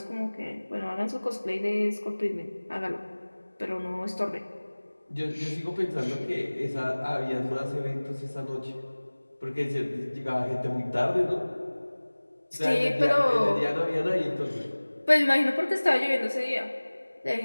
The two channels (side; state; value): both; inverted; correlation -1.00